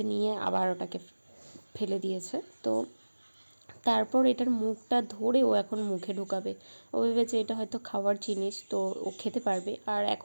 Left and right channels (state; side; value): inverted; both; correlation -1.00